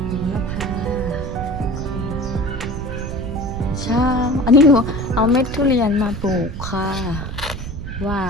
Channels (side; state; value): right; noise; rumble, 8 dB below the sound